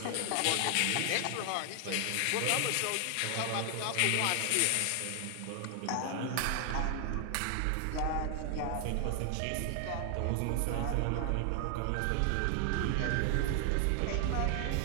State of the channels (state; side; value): different; both; correlation 0.00